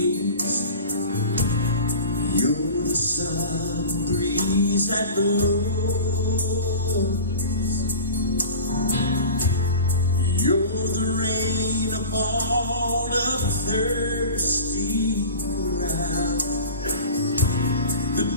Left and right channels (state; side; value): inverted; both; correlation -0.35